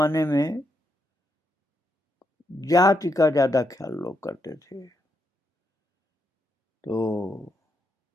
में जाति का ज्यादा ख्याल लोग करते थे, तो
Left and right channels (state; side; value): normal; both; correlation 0.81